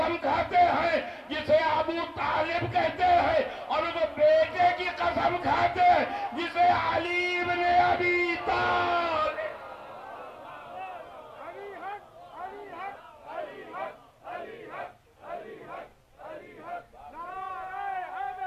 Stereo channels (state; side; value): identical; both; correlation 1.00